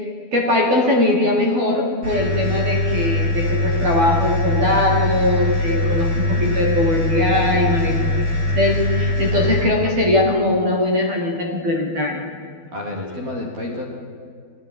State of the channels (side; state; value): left; late; 12 ms